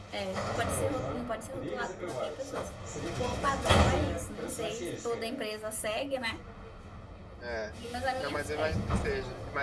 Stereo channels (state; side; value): identical; both; correlation 1.00